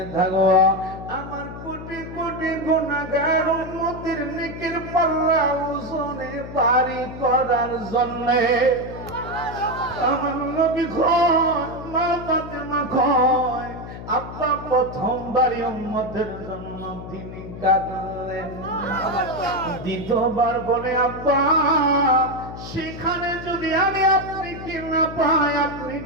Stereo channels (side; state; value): left; noise; hum, 11 dB below the sound